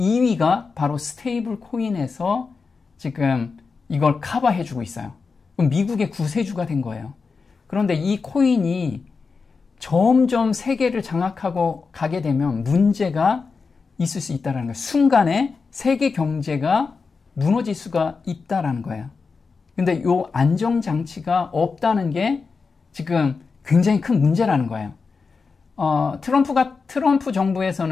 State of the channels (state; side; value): quieter; right; 4.8 dB